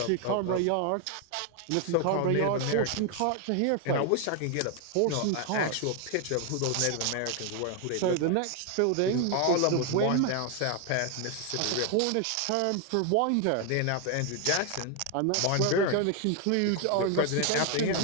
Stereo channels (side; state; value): both; different; correlation 0.01